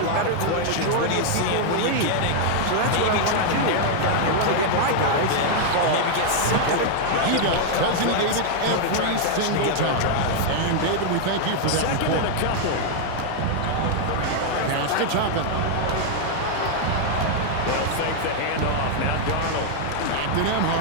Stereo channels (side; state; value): both; different; correlation 0.00